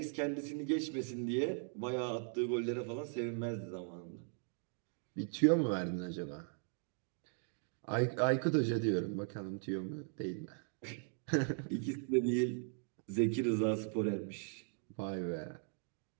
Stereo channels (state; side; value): silent; left; 52 dB below the other